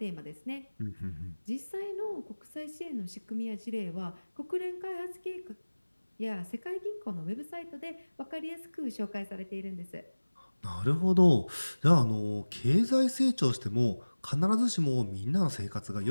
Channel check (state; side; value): inverted; both; correlation -1.00